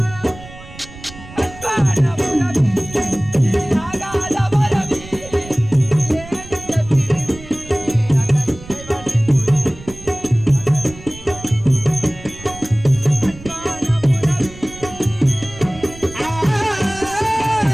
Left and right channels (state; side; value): noise; right; rumble, 17 dB below the sound